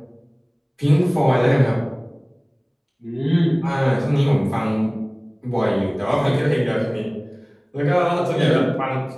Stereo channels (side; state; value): both; identical; correlation 1.00